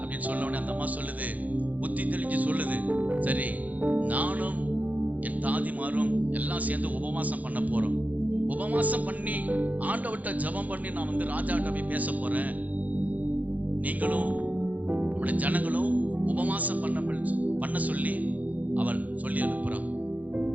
சொன்ன உடனே அந்த அம்மா சொல்லுது, புத்தி தெளிஞ்சு சொல்லுது, சரி நானும் என் தாதிமாரும் எல்லாம் சேர்ந்து உபவாசம் பண்ண போறோம். உபவாசம் பண்ணி ஆண்டவர்கிட்ட ஜெபம் பண்ணி நான் வந்து ராஜாட்ட போய் பேச போறேன். நீங்களும் நம்முடைய ஜனங்களும் உபவாசம் பண்ண சொல்லி அவள் சொல்லி அனுப்புறான்.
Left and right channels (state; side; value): late; left; 0.077 ms